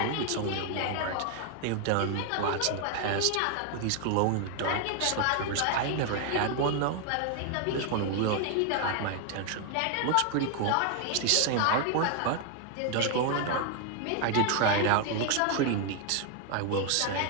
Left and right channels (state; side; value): different; both; correlation 0.00